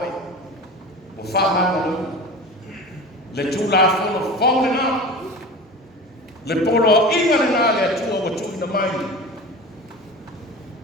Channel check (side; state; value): both; normal; correlation 0.34